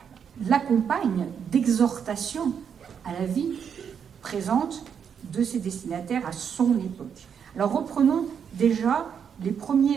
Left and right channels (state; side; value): quieter; left; 7.5 dB